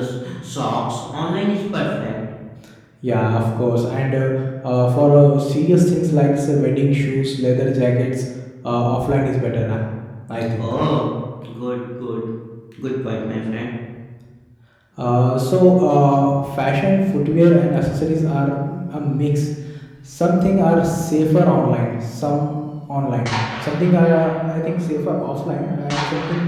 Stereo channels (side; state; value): both; identical; correlation 1.00